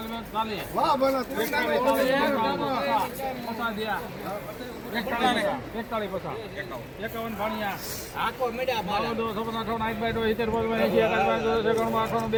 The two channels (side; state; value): both; identical; correlation 1.00